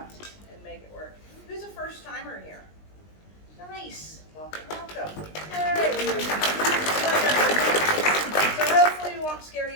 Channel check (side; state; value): right; late; 20 ms